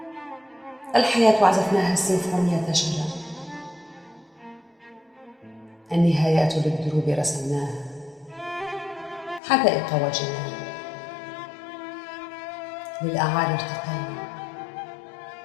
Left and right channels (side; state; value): right; drops out; at 9.4 s